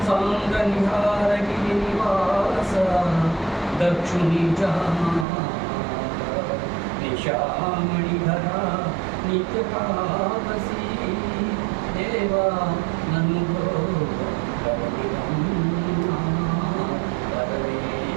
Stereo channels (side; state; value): left; drops out; at 5.2 s